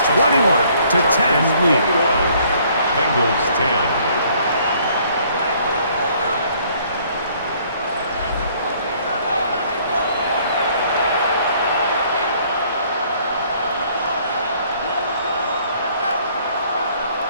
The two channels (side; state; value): both; inverted; correlation -0.62